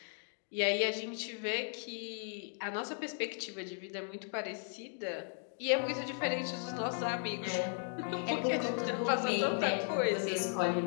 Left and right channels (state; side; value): silent; right; 54 dB below the other